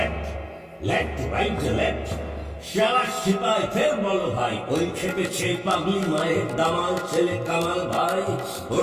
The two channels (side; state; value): both; identical; correlation 1.00